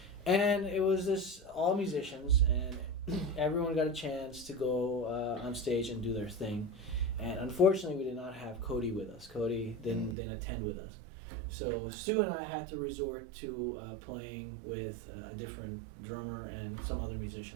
And it was all musicians, and everyone got a chance to go on stage and do their thing. And unfortunately, we did not have Cody with us. Cody didn't attend with us. So Stu and I had to resort to playing with a different drummer and some other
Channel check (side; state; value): left; drops out; at 10.2 s